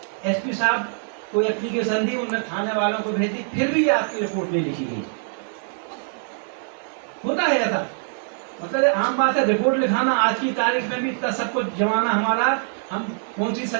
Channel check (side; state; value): left; silent; digital silence